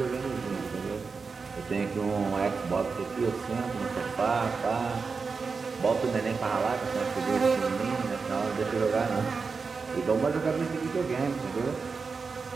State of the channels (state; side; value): quieter; left; 4.8 dB